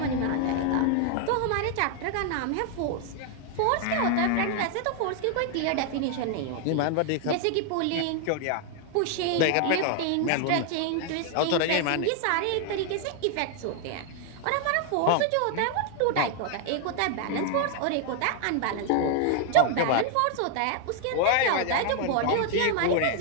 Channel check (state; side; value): different; both; correlation 0.00